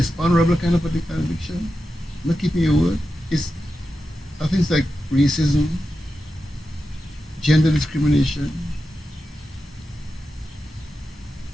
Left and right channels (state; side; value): normal; both; correlation 0.90